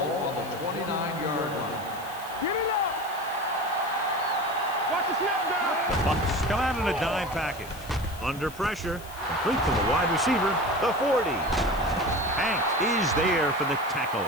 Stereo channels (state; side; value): noise; left; hiss, 18 dB below the sound